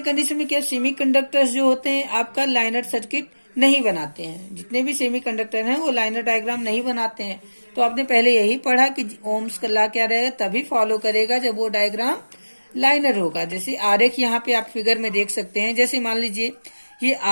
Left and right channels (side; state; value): both; inverted; correlation -1.00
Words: में क्या, सेमीकंडक्टर्स जो होते हैं आपका लाइनर सर्किट नहीं बनाते हैं। जितने भी सेमीकंडक्टर हैं वो लाइनर डायग्राम नहीं बनाते हैं। तो आपने पहले यही पढ़ा कि ओम्स का लॉ क्या रहेगा, तभी फॉलो करेगा जब वो डायग्राम लाइनर होगा। जैसे आरेख यहाँ पे आप फिगर में देख सकते हैं। जैसे मान लीजिए ये